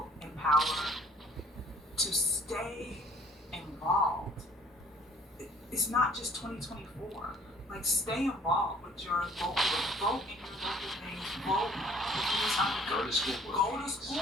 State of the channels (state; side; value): normal; both; correlation 0.57